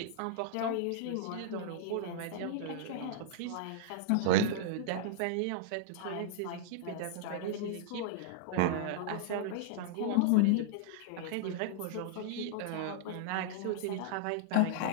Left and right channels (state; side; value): different; both; correlation -0.01